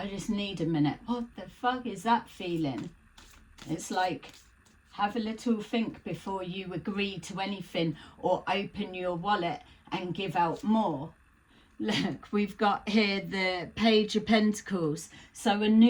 just need a minute. What the fuck is that feeling? It's like, have a little think before you agree to anything or open your wallet and give out more. Look, we've got here the Page of Pentacles. So a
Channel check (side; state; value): both; identical; correlation 1.00